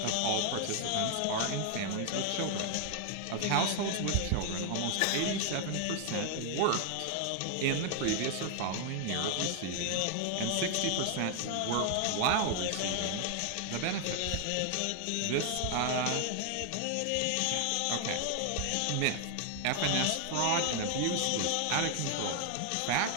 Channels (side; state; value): both; different; correlation 0.00